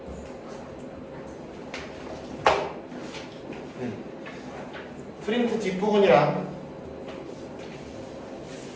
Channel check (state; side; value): identical; both; correlation 1.00